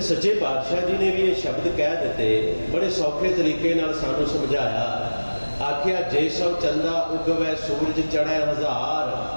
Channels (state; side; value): inverted; both; correlation -1.00